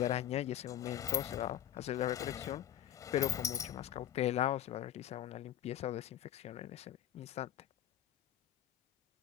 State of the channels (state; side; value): quieter; right; 11.4 dB